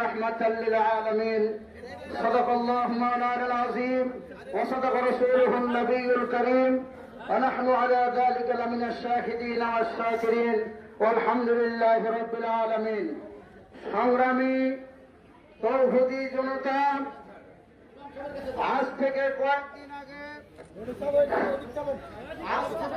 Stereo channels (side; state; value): both; identical; correlation 1.00